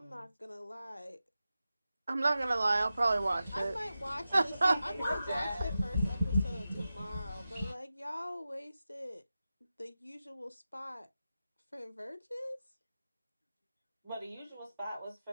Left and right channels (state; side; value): inverted; both; correlation -0.93